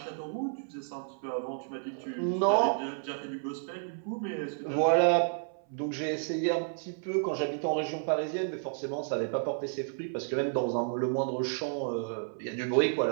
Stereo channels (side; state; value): left; silent; 57 dB below the other